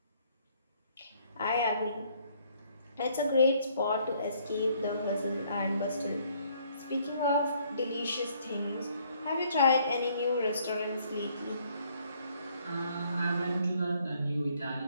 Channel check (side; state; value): both; inverted; correlation -0.65